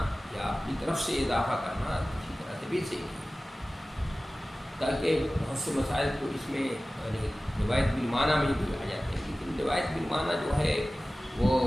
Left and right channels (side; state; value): both; normal; correlation 0.97